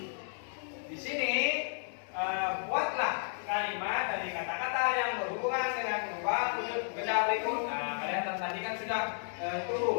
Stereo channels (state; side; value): silent; right; 56 dB below the other